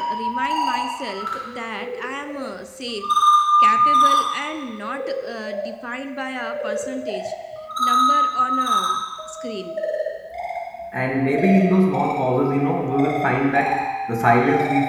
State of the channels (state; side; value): identical; both; correlation 1.00